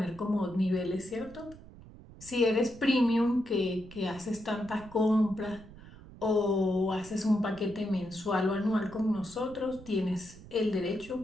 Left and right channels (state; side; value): noise; right; rumble, 18 dB below the sound